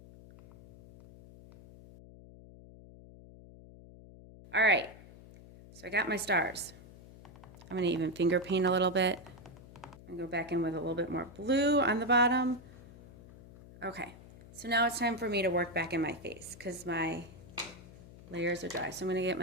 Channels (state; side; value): noise; left; hum, 19 dB below the sound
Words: All right, so I got my stars. I'm gonna even finger paint a little bit. And go back in with a little bit more blue on the bottom. Okay, so now it's time for me to work back in my face because my layers are dry. So I'm gonna get